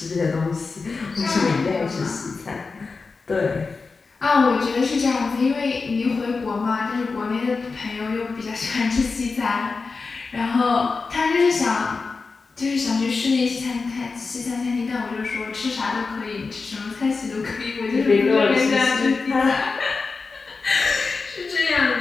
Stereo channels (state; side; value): quieter; right; 4.4 dB